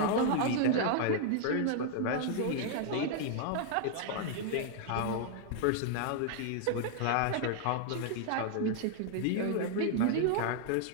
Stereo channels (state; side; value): different; both; correlation 0.00